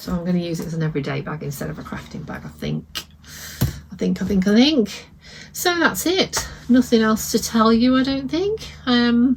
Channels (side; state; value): both; identical; correlation 1.00